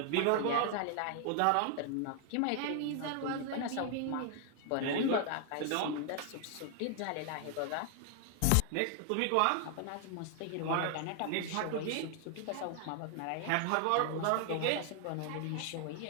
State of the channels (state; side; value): different; both; correlation 0.00